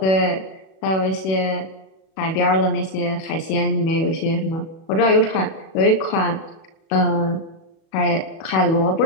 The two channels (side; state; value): right; late; 37 ms